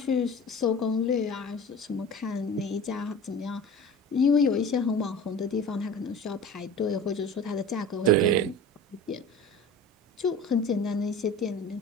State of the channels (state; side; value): normal; both; correlation 0.37